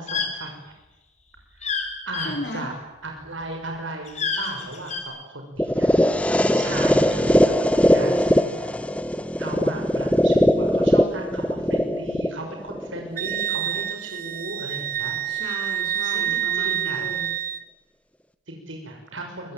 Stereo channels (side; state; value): both; normal; correlation 0.75